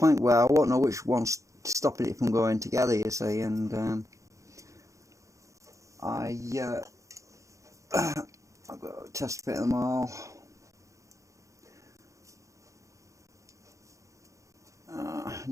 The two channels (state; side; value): late; left; 0.15 ms